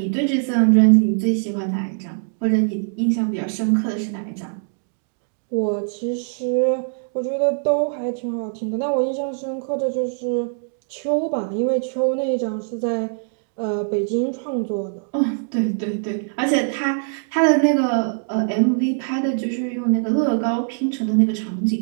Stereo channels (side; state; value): left; silent; digital silence